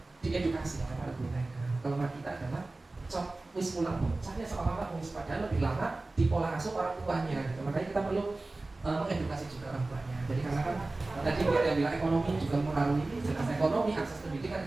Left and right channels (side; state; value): left; quieter; 3.1 dB